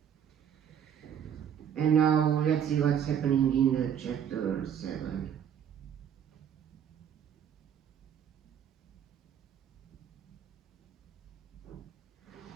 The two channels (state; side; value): quieter; left; 8.7 dB